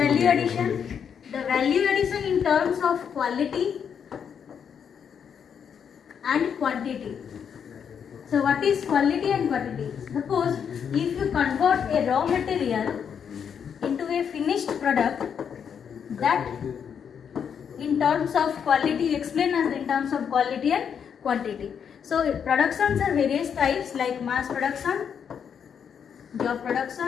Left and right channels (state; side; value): quieter; right; 7.5 dB